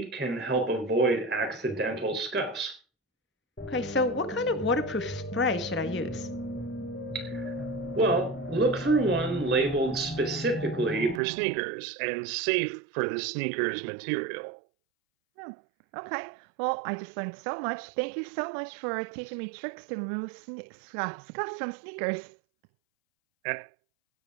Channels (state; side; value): drops out; left; at 11.2 s